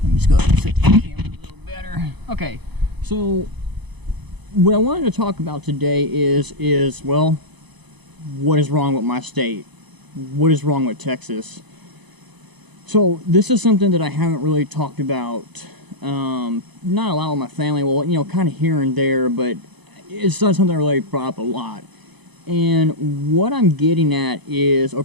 Let me just go ahead and set the camera a little better. Okay, so what I wanted to talk about today is well, what is wrong with my state? What is wrong with Texas? So this is something that I haven't really talked about, not a lot with my family. Well, you know, kind of here and there, but it's not something I really brought up a lot. And what I'm getting at is,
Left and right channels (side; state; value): left; late; 0.99 ms